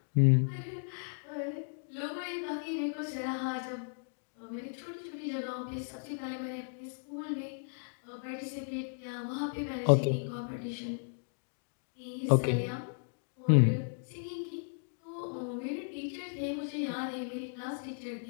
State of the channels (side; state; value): right; silent; digital silence